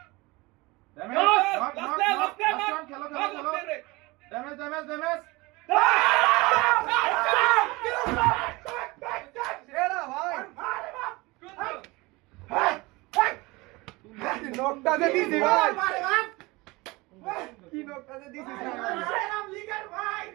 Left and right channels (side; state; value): left; quieter; 23.1 dB